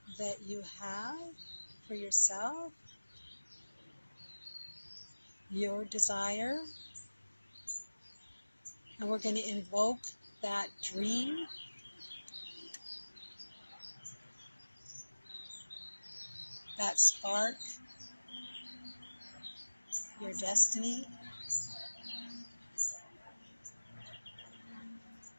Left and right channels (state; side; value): inverted; both; correlation -1.00